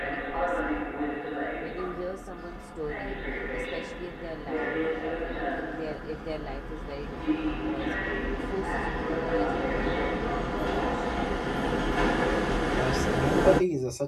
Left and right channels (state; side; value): identical; both; correlation 1.00